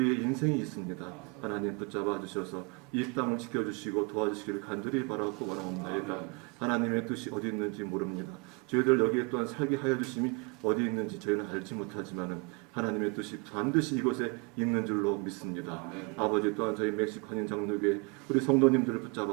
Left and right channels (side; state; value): left; quieter; 30.4 dB